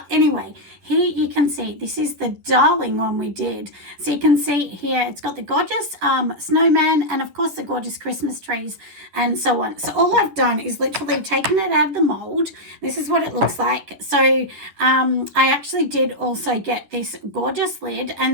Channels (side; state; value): left; late; 11 ms